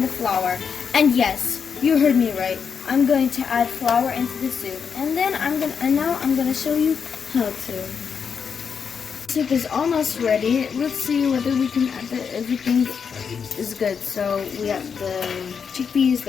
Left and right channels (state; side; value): quieter; right; 6.5 dB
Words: the flour. And yes, you heard me right. I'm going to add flour into the soup, and then now I'm gonna show you how to. Soup is almost ready. Let's see whether we can add everything is good. So we have the chickpeas,